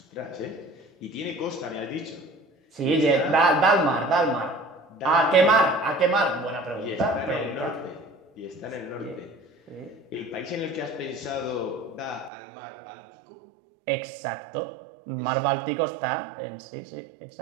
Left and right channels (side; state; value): left; drops out; at 12.3 s